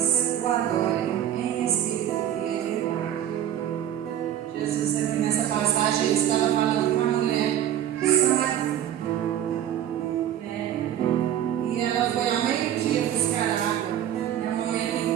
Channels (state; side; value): quieter; left; 11.0 dB